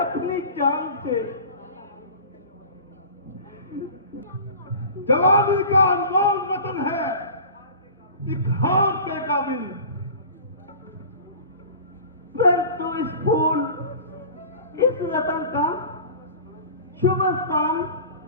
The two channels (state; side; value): inverted; both; correlation -0.39